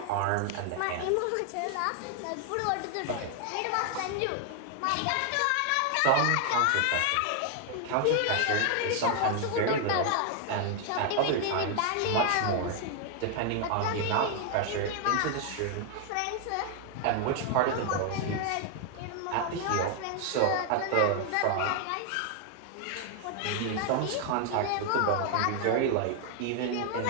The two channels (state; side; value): different; both; correlation 0.00